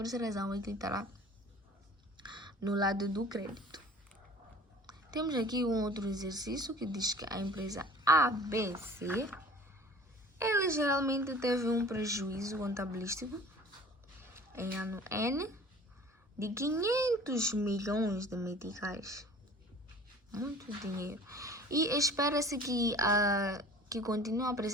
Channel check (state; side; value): normal; both; correlation 0.46